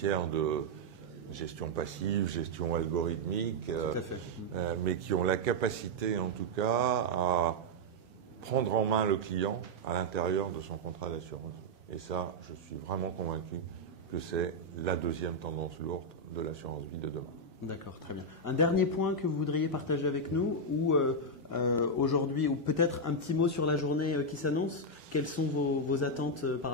de gestion passive, gestion algorithmique, mais qui ont la capacité en tout cas à prendre en main le client à l'intérieur de son contrat d'assurance. Et ça, je suis vraiment convaincu que c'est la deuxième tendance lourde de l'assurance vie de demain. D'accord, très bien. Un dernier point que vous voudriez partager avec nous, ou aujourd'hui, ou peut-être un petit mot sur la journée qui s'annonce. Quelles sont vos attentes par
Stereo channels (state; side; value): normal; both; correlation -0.02